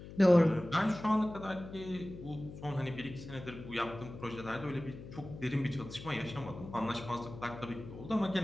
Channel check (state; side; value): noise; left; hum, 13 dB below the sound